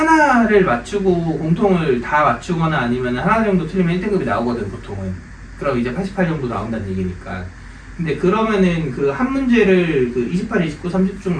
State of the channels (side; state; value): both; identical; correlation 1.00